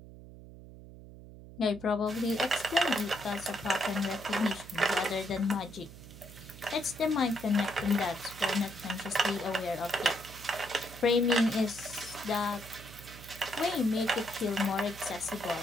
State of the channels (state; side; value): noise; right; hum, 16 dB below the sound